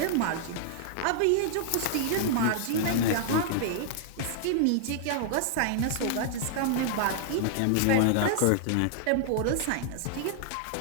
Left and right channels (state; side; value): different; both; correlation -0.01